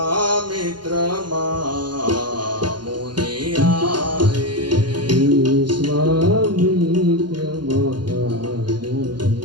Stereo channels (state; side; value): late; left; 0.71 ms